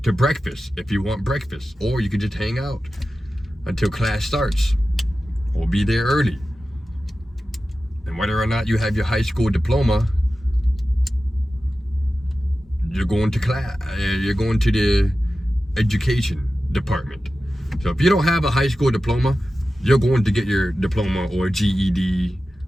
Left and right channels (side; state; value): both; normal; correlation 0.94